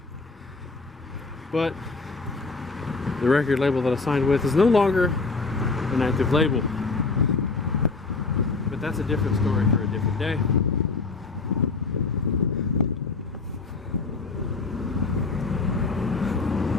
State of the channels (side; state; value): right; quieter; 4.0 dB